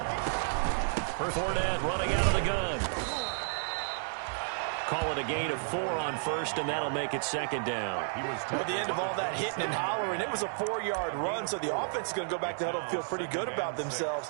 Fournette running out of the gun. Call it a gain of 4 on 1st, and that'll make it 2nd down. At the end of all that hitting and hollering, it was a 4-yard run, so the offense is going to go back to huddle and feel pretty good about themselves.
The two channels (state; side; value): silent; left; digital silence